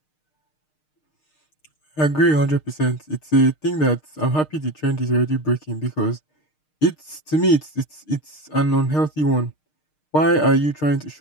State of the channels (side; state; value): right; late; 6.5 ms